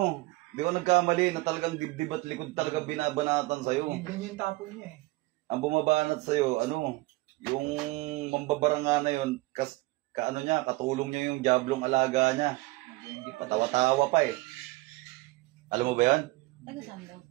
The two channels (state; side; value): quieter; left; 21.3 dB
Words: di ko nagkamali na talagang dibdib at likod talaga binabanatan sa'yo. Hindi ganyan yung tapo niya eh. Ang bumabanat sa'yo, ano, yung mambabaranga na yun, kaano niya, katulong niya yung jablong alaga niya. Hindi pa Patawa-tawa pa eh. Alam mo ba yan? Taga saan daw